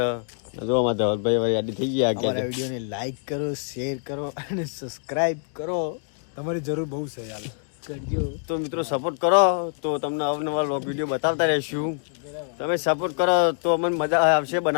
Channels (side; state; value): right; silent; digital silence